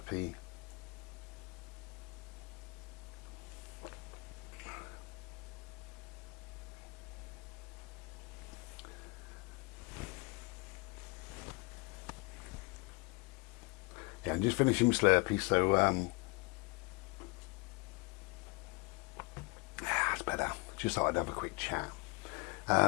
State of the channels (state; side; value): quieter; right; 28.9 dB